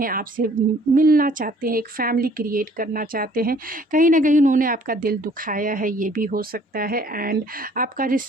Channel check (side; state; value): both; normal; correlation 0.57